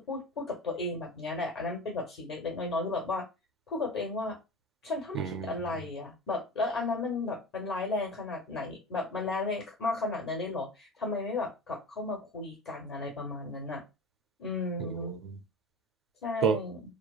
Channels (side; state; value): both; normal; correlation 0.32